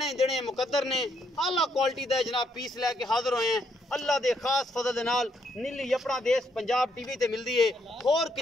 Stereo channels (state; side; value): normal; both; correlation 0.74